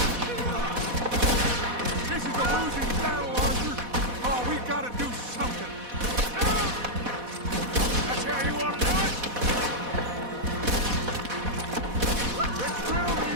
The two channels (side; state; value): left; late; 4.1 ms